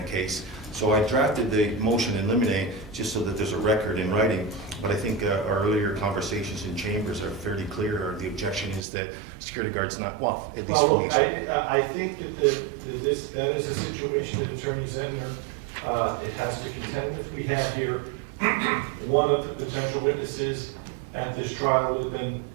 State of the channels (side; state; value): left; drops out; at 8.8 s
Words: case. So I drafted the motion in limine just so that there's a record in writing, but I think our earlier conversations in chambers are fairly clear. The objection is that security guard's not, well, at least... Well, look, I think that that is a situation that Attorney Zentner it has to contend with. We have here one of the potential witnesses at this trial would have been